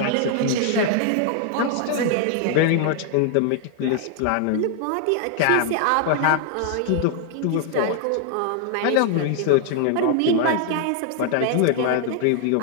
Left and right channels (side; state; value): both; different; correlation 0.00